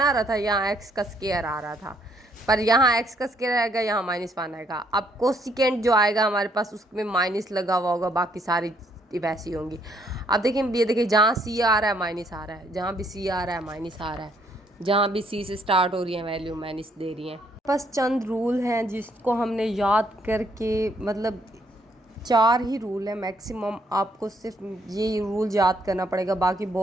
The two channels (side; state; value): both; normal; correlation 0.69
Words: रहा था, यहाँ एक्स का स्क्वायर आ रहा था, पर यहाँ एक्स का स्क्वायर आएगा, यहाँ -1 आएगा। अब कोसिकेंट जो आएगा हमारे पास उसमें माइनस लगा हुआ होगा, बाकी सारी वैसी होंगी। अब देखिए ये देखिए जहाँ सी आ रहा है माइनस आ रहा है, जहाँ भी सी आ रहा है माइनस आ रहा है, जहाँ भी सी से स्टार्ट हो रही है वैल्यू माइनस दे रही हैं। बस चंद रूल हैं जिसको हमने याद करके, मतलब 4 ही रूल है मैक्सिमम, आपको सिर्फ ये रूल याद करना पड़ेगा, बाकी